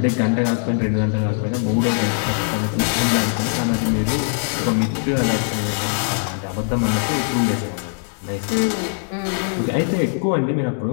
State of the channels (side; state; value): right; silent; 65 dB below the other